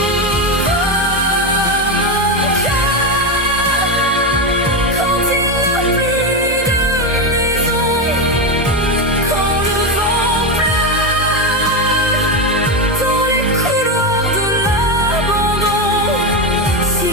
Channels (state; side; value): normal; both; correlation 0.11